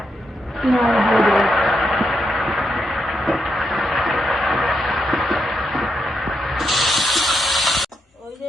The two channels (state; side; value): normal; both; correlation 0.82